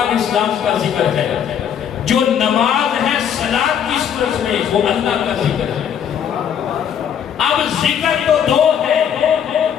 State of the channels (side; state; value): right; quieter; 8.6 dB